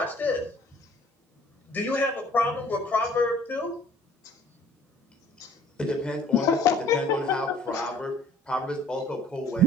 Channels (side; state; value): both; normal; correlation 0.54